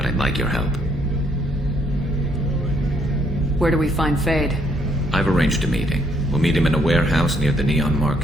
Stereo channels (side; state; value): both; normal; correlation 0.70